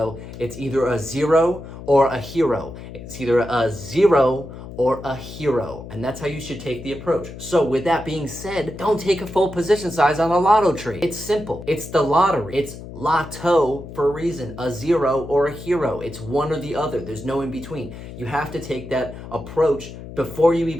it's either a zero or a hero. It's either a zero or a hero. And that's how you should take the approach. So with that being said, don't take a full position size on a lotto trade. It's simple. It's the lottery. It's lotto for a reason, a zero or a hero. It's one or the other. There's no in between. You have to take that approach before you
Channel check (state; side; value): noise; left; hum, 13 dB below the sound